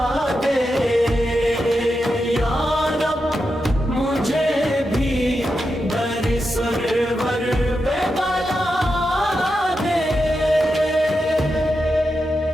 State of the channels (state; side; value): normal; both; correlation 0.88